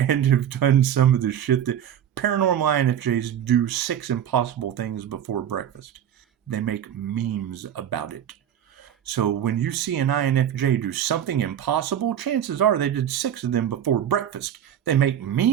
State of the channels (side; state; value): left; quieter; 9.9 dB